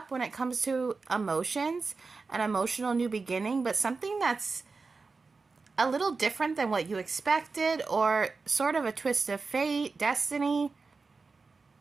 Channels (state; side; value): quieter; left; 4.3 dB